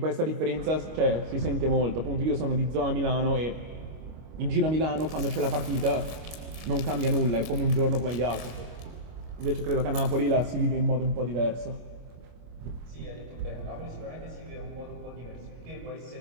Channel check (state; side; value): late; left; 25 ms